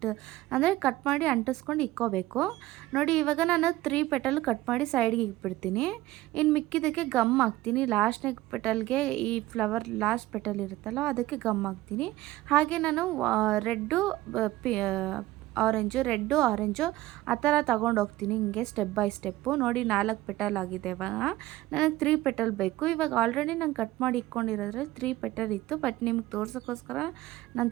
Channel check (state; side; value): quieter; left; 16.7 dB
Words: ಅಂದರೆ ಕಟ್ ಮಾಡಿ ಅಂಟಿಸ್ಕೊಂಡು ಇಕ್ಕೋಬೇಕು. ನೋಡಿ ಇವಾಗ ನಾನು 3 ಪೆಟಲ್ ಕಟ್ ಮಾಡಿ ಸೈಡ್ಗೆ ಇಟ್ಬಿಡ್ತೀನಿ. ಇನ್ನು ಮಿಕ್ಕಿದ್ದಕ್ಕೆ ಗಮ್ ಹಾಕ್ತೀನಿ. ಲಾಸ್ಟ್ನೇ ಪೆಟಲ್ಗೆ ಈ ಫ್ಲವರ್ ಲಾಸ್ಟ್ ಪೆಟಲ್ ಇರುತ್ತಲ್ಲ ಅದಕ್ಕೆ ಗಮ್ ಹಾಕ್ತೀನಿ. ಹಾಗೆ ನಾನು ರೆಡ್ಡು ಆರೆಂಜು ಆ ಥರ ತೊಗೊಂಡೋಗ್ತೀನಿ ಹಿಂಗೆ ಸ್ಟೆಪ್ ಬೈ ಸ್ಟೆಪ್ಪು. ನೋಡಿ 4 ಪೆಟಲ್ ಆಗಿದೆ. ಇವಾಗ ನನಗೆ 3 ಪೆಟಲ್ ಬೇಕು. ಇವಾಗ ಆಲ್ರೆಡಿ ನಾನು ಕಟ್ ಮಾಡಿ ಇಟ್ಕೊಂಡಿರೋದ್ರಲ್ಲಿ 3 ಪೆಟಲ್ ಇತ್ತು. ಬಟ್ ನಿಮ್ಗೆ ತೋರ್ಸೋಕ್ಕೋಸ್ಕರ ನಾನು